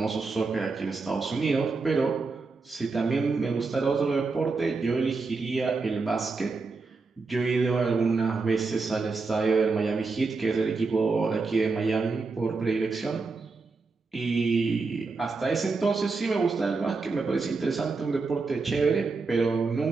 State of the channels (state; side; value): quieter; left; 4.1 dB